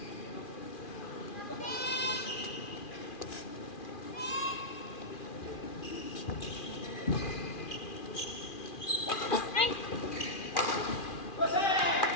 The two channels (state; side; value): late; right; 2.4 ms